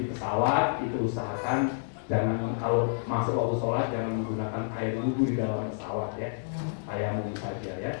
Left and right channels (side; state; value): right; silent; digital silence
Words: pesawat itu usahakan jangan kalau masuk waktu sholat jangan menggunakan air wudhu di dalam pesawat ya. Tayamum saja ya.